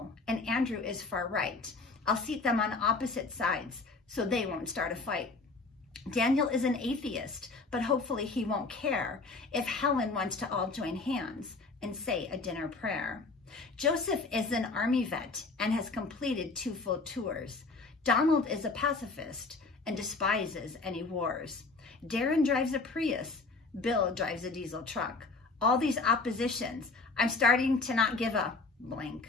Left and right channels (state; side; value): quieter; right; 3.9 dB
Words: and Andrew is far right. I'll seat them on opposite sides so they won't start a fight. Daniel is an atheist, but hopefully he won't care if Helen wants to all join hands and say a dinner prayer. Joseph is an army vet and has completed 2 full tours. Donald is a pacifist and despises any wars. Darren drives a Prius. Bill drives a diesel truck. All these oppositions, I'm starting to not give a